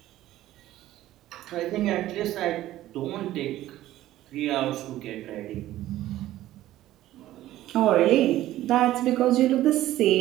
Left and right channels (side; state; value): left; quieter; 14.5 dB